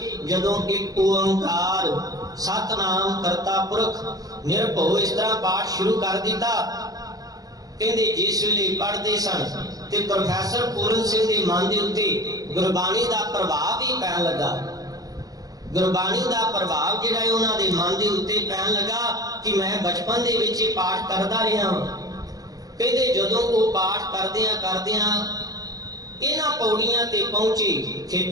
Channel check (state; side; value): late; left; 0.18 ms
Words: जदों एक ओंकार सतनाम करता पुरख निरभव इस तरह पाठ शुरू कर दिता। कहंदे जिस वेले पढ़ते सन ते प्रोफैसर पूरन सिंह दे मन दे उत्ते गुरबाणी दा प्रभाव भी पैण लगा। गुरबाणी दा प्रभाव जिहड़ा है उन्हां दे मन दे उत्ते पैण लगा कि मैं बचपन दे विच पाठ करदा रहा हां। कहते जदों वो पाठ करदियां इन्हां पौड़ियां ते पहुंचे,